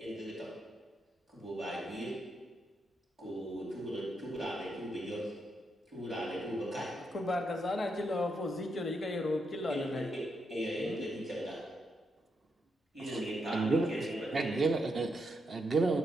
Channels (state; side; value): normal; both; correlation 0.81